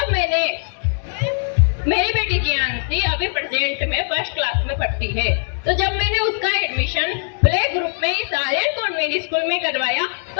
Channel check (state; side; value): silent; right; digital silence